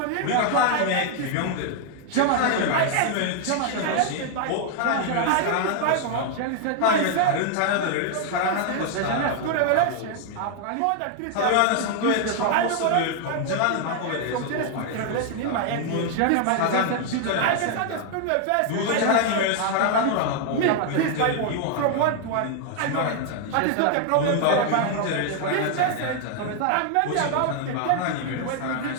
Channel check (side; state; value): both; different; correlation 0.00